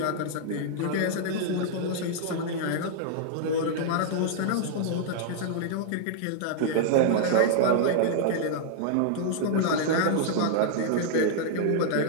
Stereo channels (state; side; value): different; both; correlation -0.01